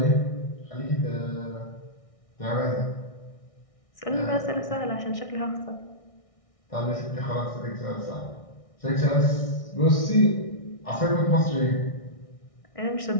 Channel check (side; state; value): right; late; 1.6 ms